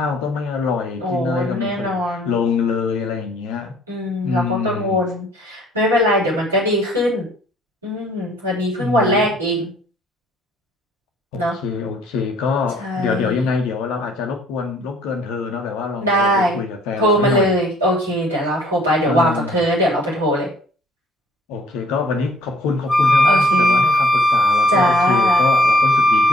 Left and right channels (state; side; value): normal; both; correlation 0.59